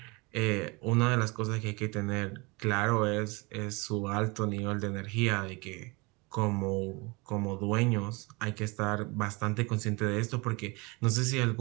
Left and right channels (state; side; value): quieter; left; 26.7 dB